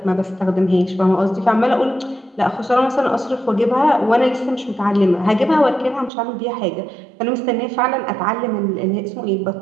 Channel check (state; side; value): drops out; left; at 6.1 s